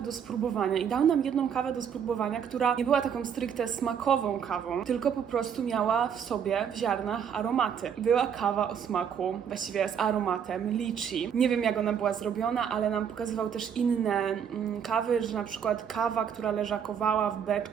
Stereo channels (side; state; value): left; quieter; 7.9 dB